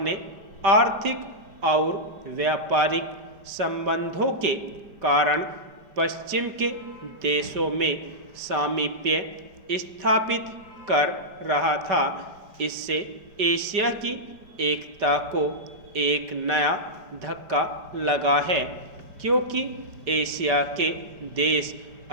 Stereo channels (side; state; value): left; late; 5.2 ms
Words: आर्थिक और व्यापारिक संबंधों के कारण पश्चिम के देशों में सामीप्य स्थापित कर रहा था। इससे एशिया की एकता को एक नया धक्का लगा है, क्योंकि एशिया के देश